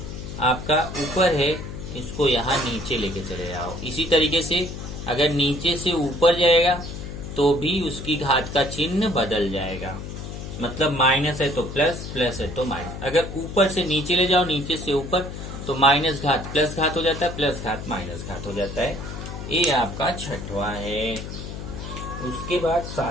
आपका ऊपर है, इसको यहाँ नीचे लेके चले जाओ। इसी तरीके से अगर नीचे से ऊपर जाएगा तो भी उसकी घात का चिन्ह बदल जाएगा। मतलब माइनस है तो प्लस, प्लस है तो माइनस। अगर ऊपर से नीचे ले जाओ, नीचे से ऊपर, तो माइनस घात प्लस घात हो जाता है, प्लस घात माइनस घात हो जाता है। ये आपका छठवां है। उसके बाद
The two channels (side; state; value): left; noise; hum, 9 dB below the sound